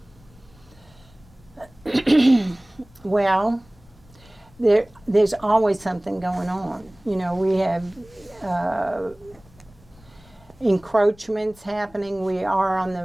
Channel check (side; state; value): left; noise; rumble, 26 dB below the sound